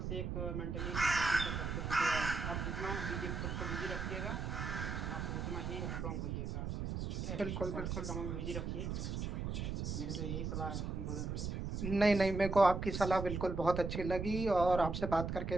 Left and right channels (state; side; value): noise; right; rumble, 3 dB below the sound